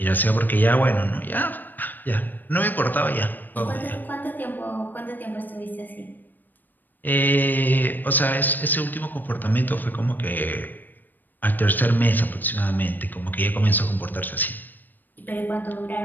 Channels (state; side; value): late; right; 0.089 ms